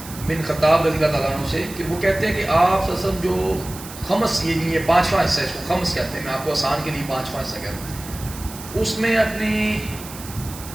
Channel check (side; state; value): right; noise; hiss, 14 dB below the sound